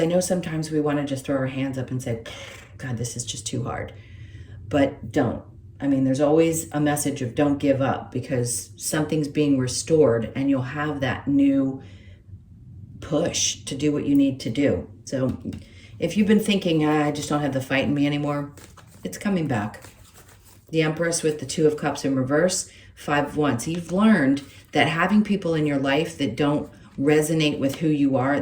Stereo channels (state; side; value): identical; both; correlation 1.00